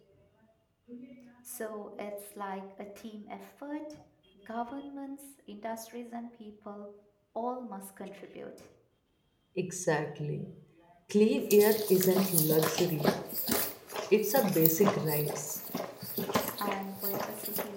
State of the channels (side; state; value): both; identical; correlation 1.00